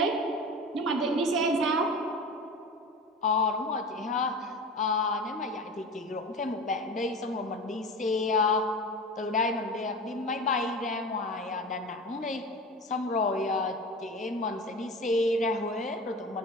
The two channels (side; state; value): both; normal; correlation 0.32